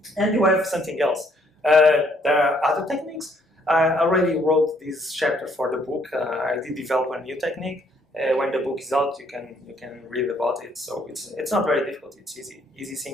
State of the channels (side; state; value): both; normal; correlation 0.67